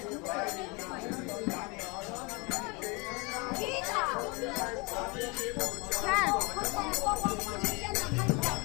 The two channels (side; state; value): right; quieter; 28.9 dB